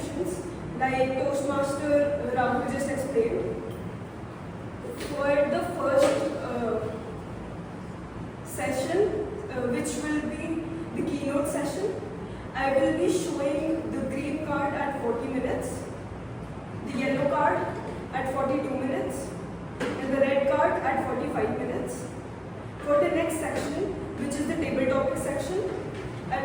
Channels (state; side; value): identical; both; correlation 1.00